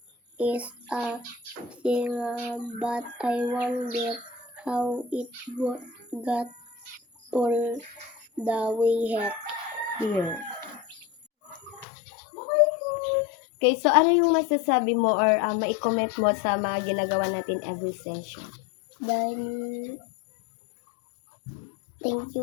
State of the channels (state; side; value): drops out; right; at 11.9 s